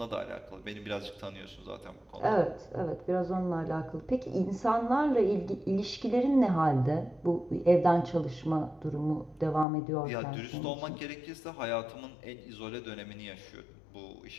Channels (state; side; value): drops out; right; at 9.7 s